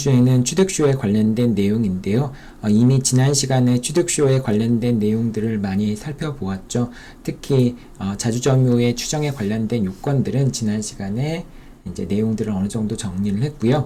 취득쇼에 관련된 내용인데요. 이미 지난 시간에 취득쇼에 관련된 내용들을 많이 살펴보았죠. 특히 자주점유의 추정에 관련된 요건들은 지난 시간에 이제 내용들을 어느 정도 정리를 했고요.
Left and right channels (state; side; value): identical; both; correlation 1.00